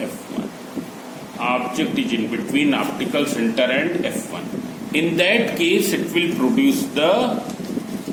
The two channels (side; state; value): both; identical; correlation 1.00